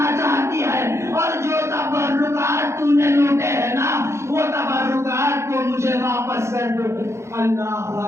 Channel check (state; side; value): late; left; 0.13 ms